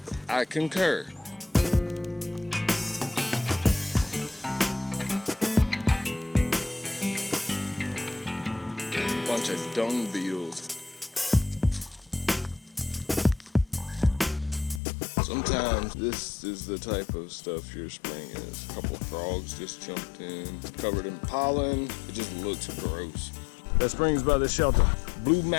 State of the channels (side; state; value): right; drops out; at 14.8 s